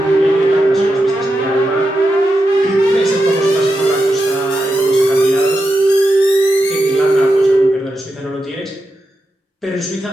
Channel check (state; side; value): normal; both; correlation 0.88